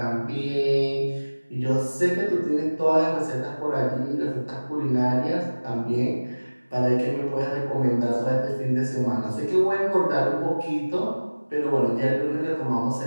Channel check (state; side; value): inverted; both; correlation -1.00